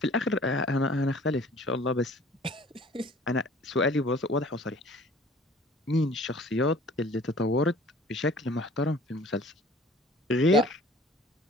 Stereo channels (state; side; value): normal; both; correlation 0.50